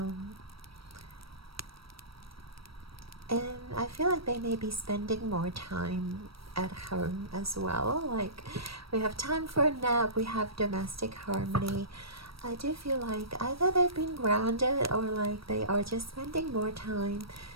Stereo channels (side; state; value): left; late; 0.75 ms